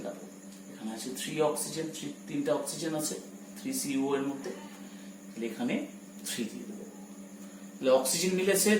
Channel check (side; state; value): both; identical; correlation 1.00